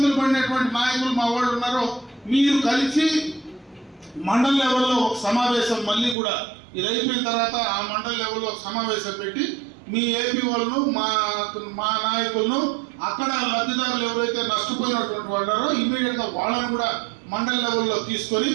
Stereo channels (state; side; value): drops out; left; at 6.2 s